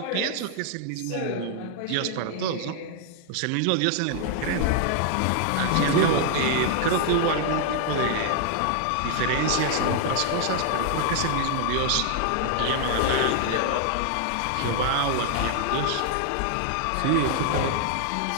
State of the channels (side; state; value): both; different; correlation 0.00